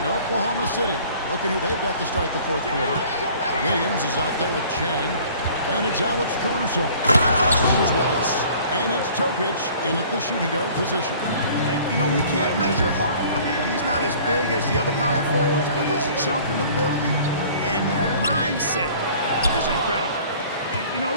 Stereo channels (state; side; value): inverted; both; correlation -0.50